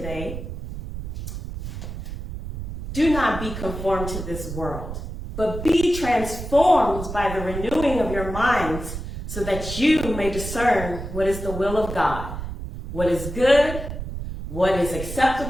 Do not be conformed to this world, but be transformed by the renewing of your minds, so that you may discern what is the will of God, what is good, what is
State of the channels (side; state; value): right; noise; rumble, 7 dB below the sound